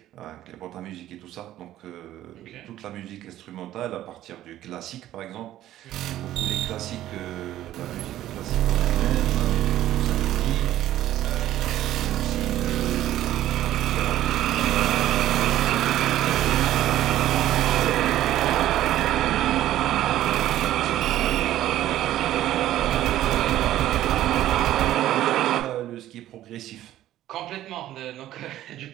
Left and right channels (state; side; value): quieter; left; 13.4 dB